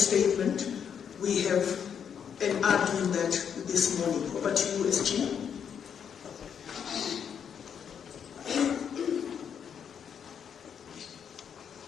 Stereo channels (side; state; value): right; quieter; 7.8 dB